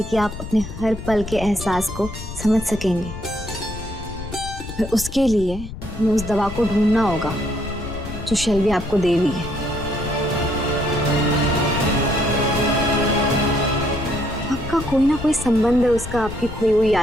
कि आप अपने हर पल के एहसास को समझ सकेंगे। पर उसके लिए हमें उस दवा को ढूंढना होगा जो शेल्वी आपको दे रही है। का कोई ना कोई संबंध है उसका आपकी खोई हुई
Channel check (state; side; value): noise; left; rumble, 10 dB below the sound